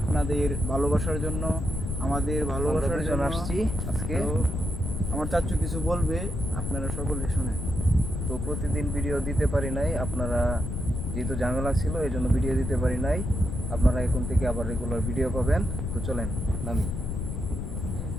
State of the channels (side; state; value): left; noise; rumble, 3 dB below the sound